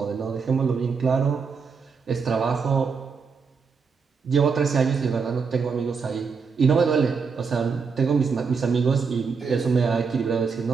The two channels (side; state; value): left; quieter; 5.4 dB